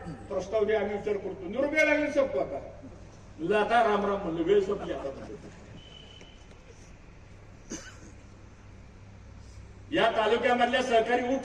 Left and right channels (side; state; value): both; identical; correlation 1.00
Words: प्रस्ताव द्या, आम्ही विचार करतो. निरुपया लागले संपतो. आता राम राम म्हणलं, वेळ संपली. आता या तालुक्यामधल्या सहकारी